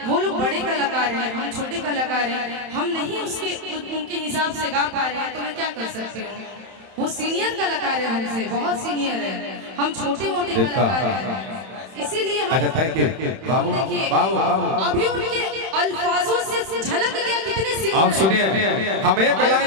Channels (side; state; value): left; late; 31 ms